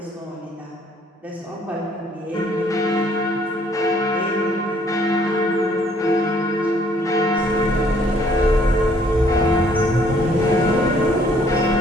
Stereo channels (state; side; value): normal; both; correlation 0.62